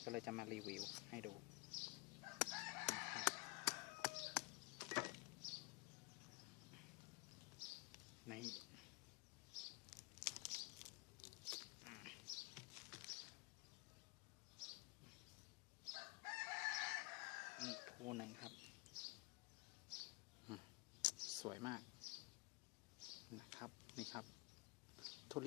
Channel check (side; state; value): right; quieter; 23.0 dB